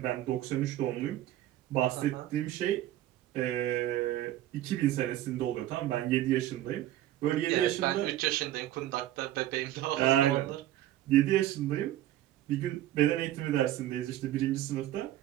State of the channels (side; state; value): left; quieter; 13.6 dB